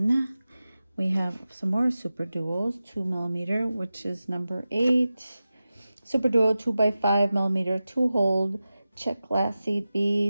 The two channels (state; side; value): inverted; both; correlation -0.94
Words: we have some more Super Duos, 2 millimeter, which is number 8. Super Duo 2x5 millimeter 2-hole check glass seed